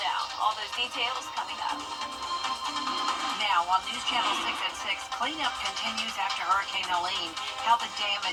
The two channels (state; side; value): identical; both; correlation 1.00